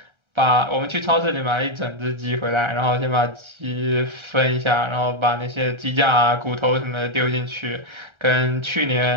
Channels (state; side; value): late; left; 1.3 ms